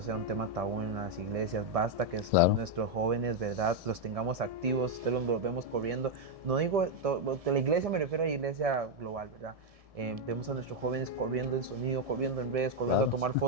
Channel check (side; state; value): left; late; 1.7 ms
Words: un tema tabú en las iglesias, basta que nuestros jóvenes, ¿verdad?, los tengamos activos, ustedes los vemos corriendo. No digo, de la iglesia me refiero a la iglesia global, ¿verdad? Vemos a nuestros jóvenes corriendo en sonido, corriendo en redes, corriendo a tomar